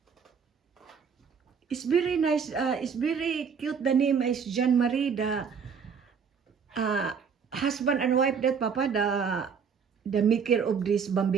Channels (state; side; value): quieter; left; 6.4 dB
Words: It's very nice. It's very cute. The name is Jean Marie. The husband and wife that Papa. The maker of this